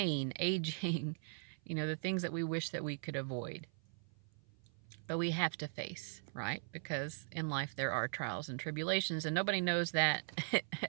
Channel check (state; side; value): silent; left; 51 dB below the other